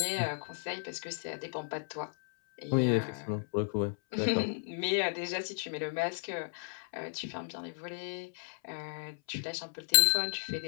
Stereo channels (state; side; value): silent; right; 55 dB below the other